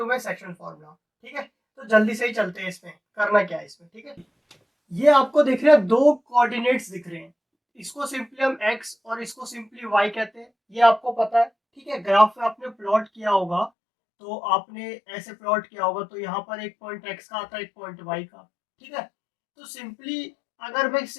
में सेक्शन फार्मूला। ठीक है, तो जल्दी से ही चलते हैं इसमें, करना क्या है इसमें। ठीक है, ये आपको दिख रहे हैं, दो कोऑर्डिनेट्स दिख रहे हैं। इसको सिंपली हम x और इसको सिंपली y कहते हैं, ये आपको पता है। ठीक है, ग्राफ में आपने प्लॉट किया होगा, तो आपने ऐसे प्लॉट किया होगा, तो यहाँ पर एक पॉइंट x का आता है, एक पॉइंट y का। ठीक है, तो सिंपली अगर मैं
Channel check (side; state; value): right; drops out; at 13.7 s